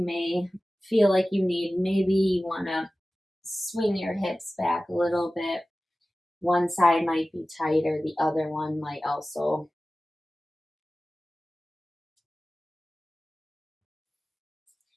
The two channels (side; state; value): both; normal; correlation 0.96